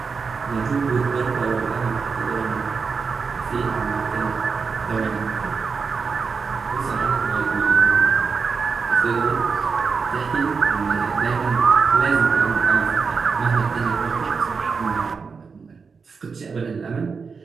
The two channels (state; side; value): quieter; left; 5.3 dB